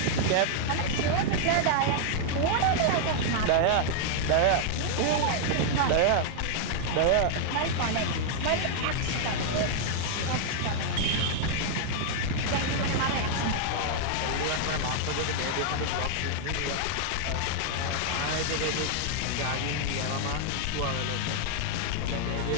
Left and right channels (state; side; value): different; both; correlation 0.00